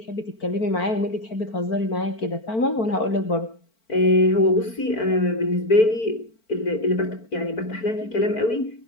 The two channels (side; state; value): right; late; 4.5 ms